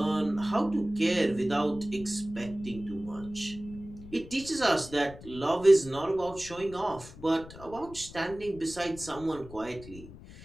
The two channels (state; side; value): noise; left; rumble, 16 dB below the sound